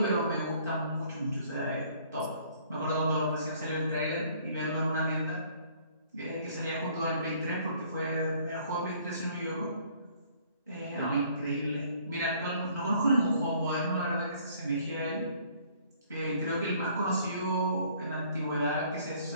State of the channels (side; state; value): both; inverted; correlation -0.59